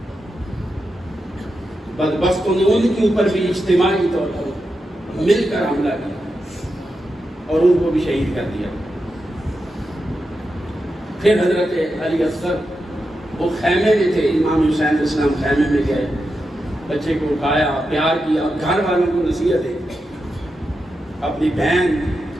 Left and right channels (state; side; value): normal; both; correlation 0.88